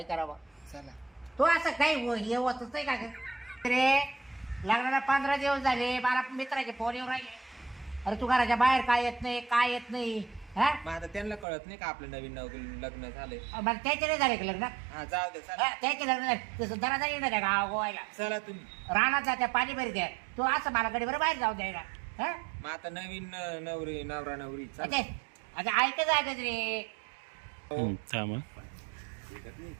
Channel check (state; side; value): drops out; left; at 11.5 s